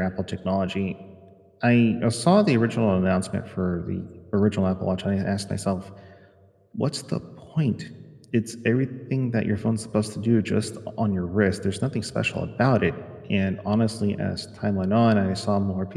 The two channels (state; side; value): identical; both; correlation 1.00